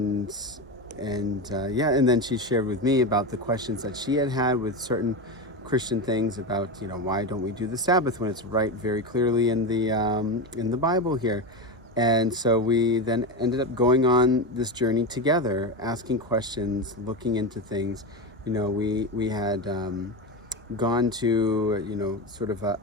then she shared with me about the questions that she had with certain Christian things about, why don't we do the Sabbath when it's right very clearly in the Bible here. And so we then ended up going on this journey together, asking questions, looking into things. We had gone to, sort of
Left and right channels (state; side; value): normal; both; correlation 0.18